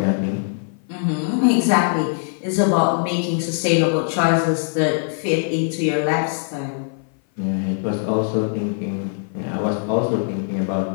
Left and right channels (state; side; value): silent; right; 56 dB below the other